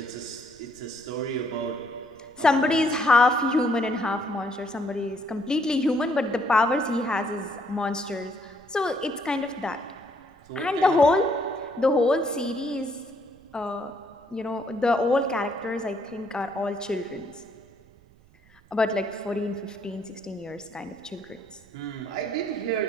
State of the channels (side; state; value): right; noise; rumble, 28 dB below the sound